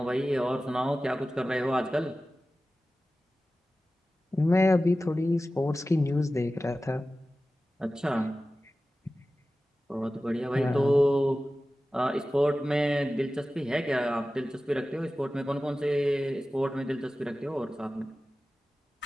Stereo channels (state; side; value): normal; both; correlation 0.95